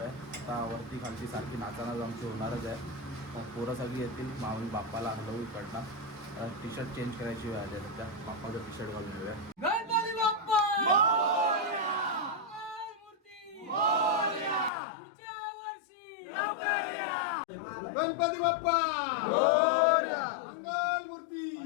आहे. आता वरती खालची सारखी नाचानाच आमची होणारच आहे. मग पोरं सगळी येतील. माऊली बाप्पाला हलवू इकडनं. टी शर्ट चेंज करायची वेळ आली आहे. त्या बाप्पाचं टी शर्ट घालून येऊया. गणपती बाप्पा गणपती बाप्पा मंगलमूर्ती.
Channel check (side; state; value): right; drops out; at 14.7 s